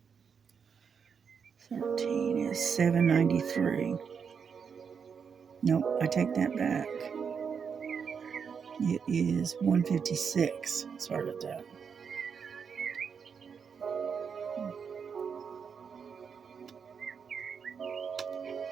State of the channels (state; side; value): quieter; left; 6.5 dB